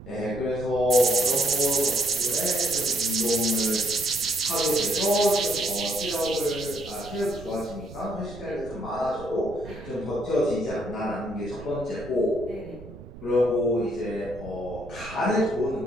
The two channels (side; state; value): right; noise; rumble, 15 dB below the sound